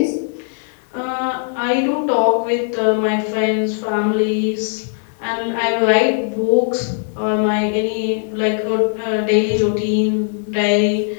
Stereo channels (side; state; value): right; silent; 67 dB below the other